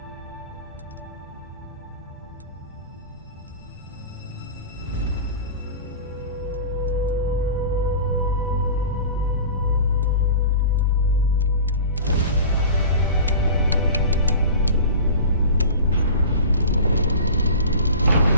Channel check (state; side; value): inverted; both; correlation -0.36